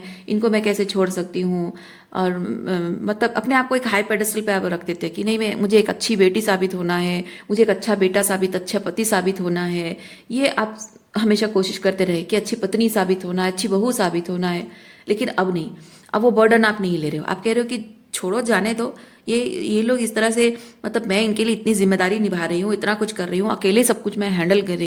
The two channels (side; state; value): both; identical; correlation 1.00